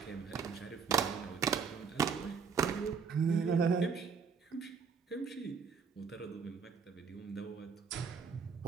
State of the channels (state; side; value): quieter; left; 5.9 dB